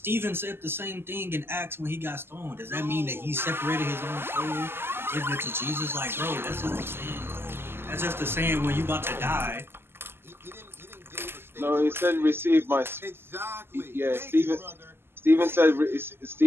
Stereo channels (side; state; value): left; late; 0.11 ms